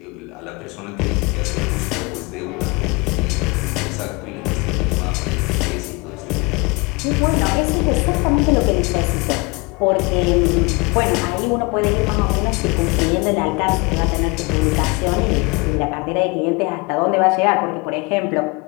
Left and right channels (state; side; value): quieter; right; 27.3 dB